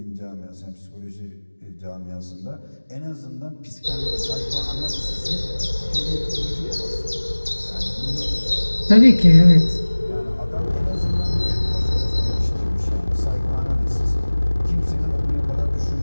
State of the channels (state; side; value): inverted; both; correlation -1.00